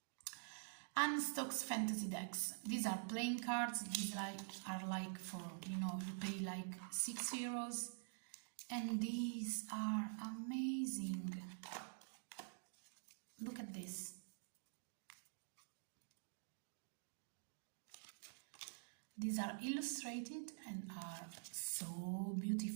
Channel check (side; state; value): left; silent; digital silence